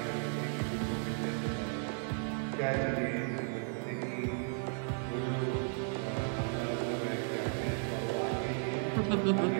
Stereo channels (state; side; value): silent; left; 55 dB below the other